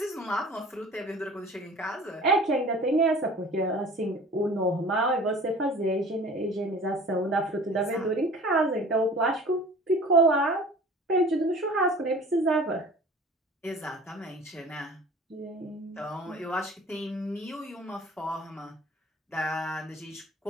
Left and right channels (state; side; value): normal; both; correlation 0.45